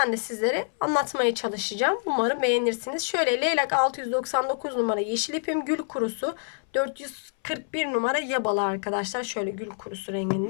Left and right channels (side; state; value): right; silent; 60 dB below the other